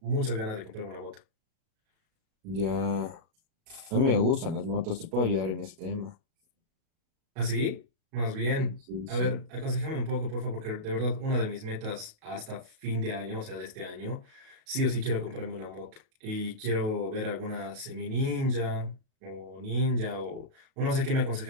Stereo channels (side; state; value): left; late; 37 ms